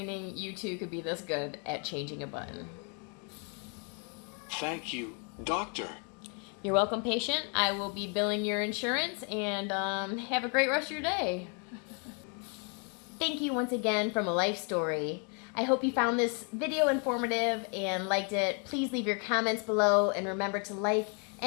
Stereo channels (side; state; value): right; quieter; 38.1 dB